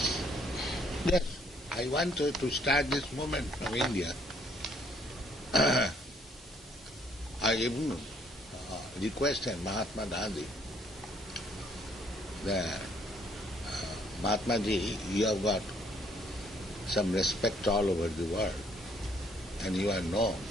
Yes, I wanted to start this movement from India. I even requested Mahatma Gandhi that Mahatma Ji, you have got some respect all over the world, and you are known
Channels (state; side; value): normal; both; correlation 0.65